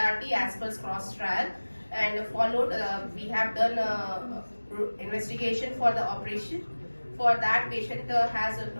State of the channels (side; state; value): both; inverted; correlation -1.00